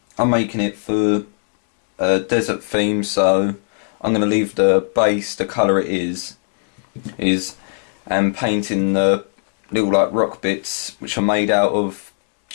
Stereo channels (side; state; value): right; silent; 66 dB below the other